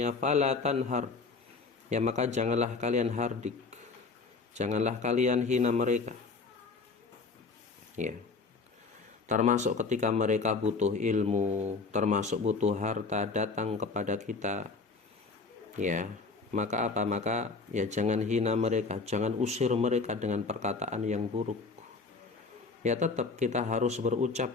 fala tanhar, ya, maka janganlah kalian hardik, janganlah kalian hina mereka. Ya. Termasuk ketika mereka butuh ilmu, termasuk butuh harta datang kepada kita, ya, maka apa? Maka, ya, jangan hina mereka, jangan usir mereka dengan perkataan yang buruk. Ya, tetap kita harus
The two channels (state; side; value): quieter; right; 4.3 dB